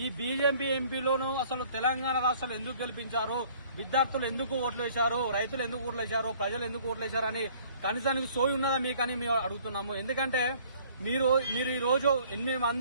ఈ బీజేపీ ఎంపీలను అసలు తెలంగాణ రాష్ట్రాలు ఎందుకు గెలిపించారు, విద్యార్థులు ఎందుకు ఓట్లు వేశారు, రైతులు ఎందుకు ఓట్లు వేశారు, ప్రజలు ఎందుకు ఓట్లు వేశారని కనీసానికి సోయి ఉన్నదా మీకని మేము అడుగుతున్నాము. ఎందుకంటే మీరు ఈ రోజు 8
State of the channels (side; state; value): both; inverted; correlation -0.56